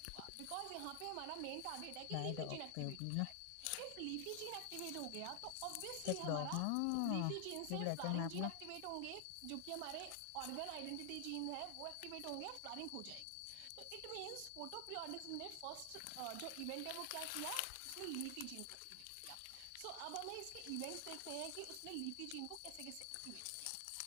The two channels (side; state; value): both; different; correlation 0.00